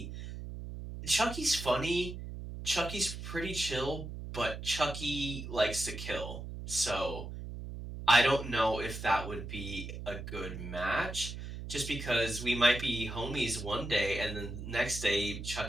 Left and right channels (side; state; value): right; noise; hum, 8 dB below the sound